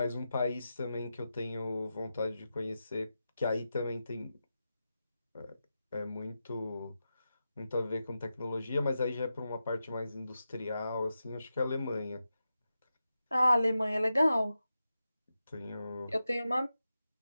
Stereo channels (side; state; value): both; inverted; correlation -0.90